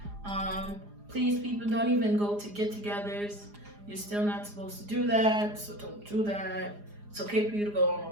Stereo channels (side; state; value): left; late; 4.9 ms